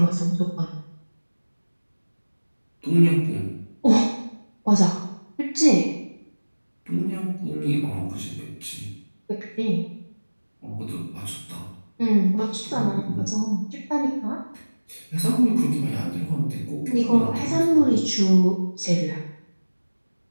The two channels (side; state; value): both; inverted; correlation -1.00